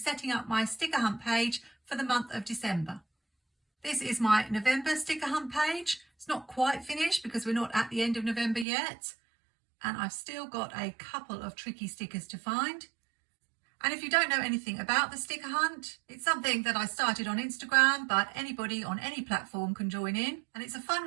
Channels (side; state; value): left; drops out; at 8.7 s